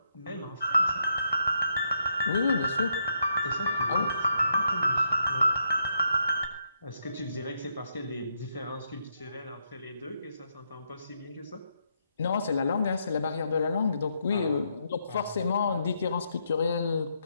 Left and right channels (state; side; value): inverted; both; correlation -0.78